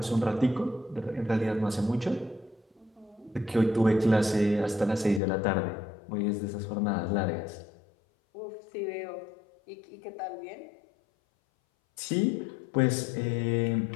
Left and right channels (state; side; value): drops out; right; at 5.2 s